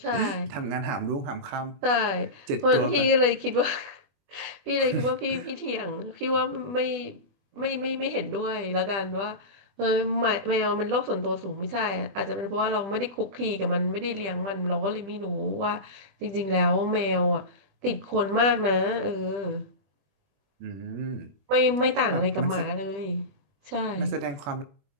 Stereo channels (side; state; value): left; late; 20 ms